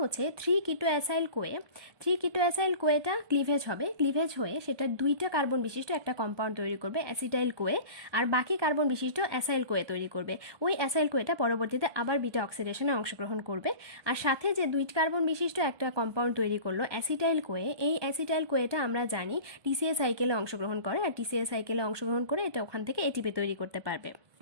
3 কিটো অ্যাসাইল কোয়ে, 3 কিটো অ্যাসাইল কোয়েটা ক্লিভেজ হবে, ক্লিভেজ হয়ে সেটা 2টা কার্বন বিশিষ্ট একটা কম্পাউন্ড তৈরি করবে অ্যাসিটাইল কোয়ে, আর বাকি কার্বন বিশিষ্ট অ্যাসাইল কোয়ে তৈরি করবে। ওই অ্যাসাইল কোয়েটা পরবর্তীতে আবার বিটা অক্সিডেশনে অংশগ্রহণ করবে, আর সাথে যে 2 কার্বন বিশিষ্ট একটা কম্পাউন্ড তৈরি করলো অ্যাসিটাইল কোয়ে, এই অ্যাসিটাইল কোয়েটা আমরা জানি টিসিএ সাইকেলে অংশগ্রহণ করে, আর টিসিএ সাইকেলে অংশগ্রহণ করে এটা ওখান থেকে এটিপি তৈরি করতে পারবে।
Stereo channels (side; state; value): left; late; 1.2 ms